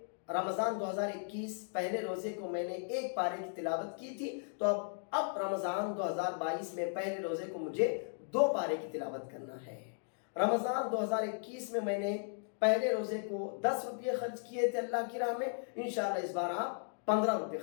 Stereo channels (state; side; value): silent; right; digital silence